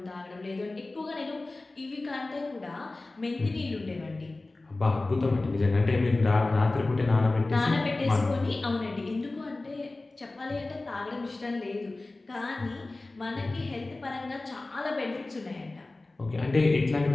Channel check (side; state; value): right; quieter; 3.1 dB